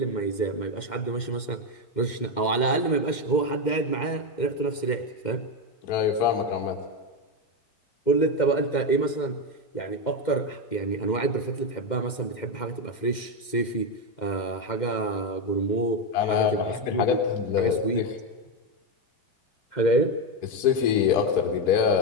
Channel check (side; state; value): right; late; 2.1 ms